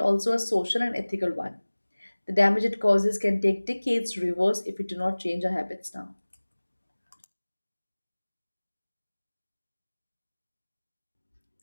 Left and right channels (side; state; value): both; inverted; correlation -1.00